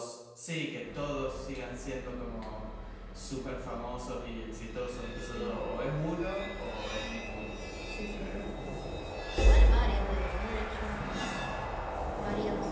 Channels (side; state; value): both; identical; correlation 1.00